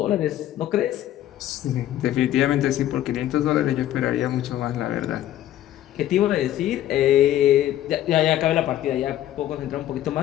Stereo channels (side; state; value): right; quieter; 12.7 dB